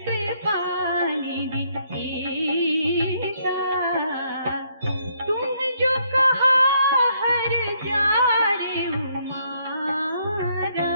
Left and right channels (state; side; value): inverted; both; correlation -0.71